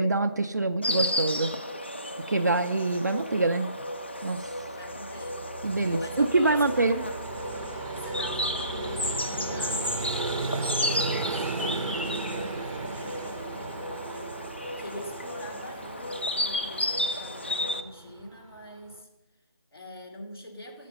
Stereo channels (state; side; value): inverted; both; correlation -0.51